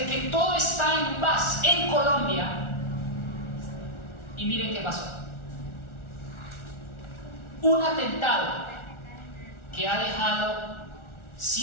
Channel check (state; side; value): late; right; 1.4 ms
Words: que todo está en paz en Colombia, y miren qué pasó. Un atentado que ha dejado